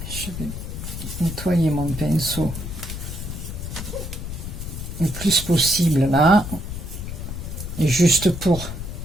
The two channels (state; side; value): noise; left; rumble, 7 dB below the sound